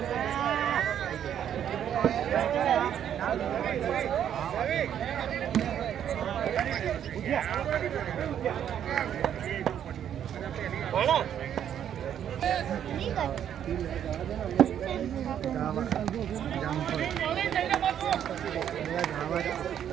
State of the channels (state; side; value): quieter; left; 9.6 dB